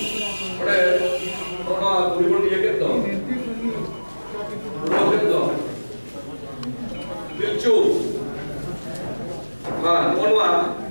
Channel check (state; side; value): inverted; both; correlation -1.00